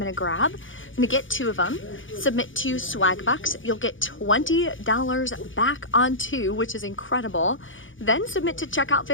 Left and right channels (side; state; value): right; late; 0.57 ms